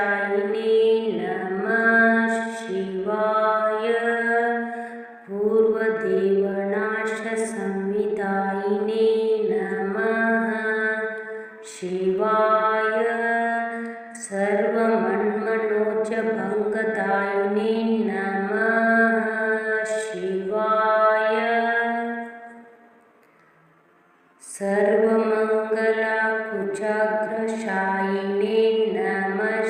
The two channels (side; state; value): both; identical; correlation 1.00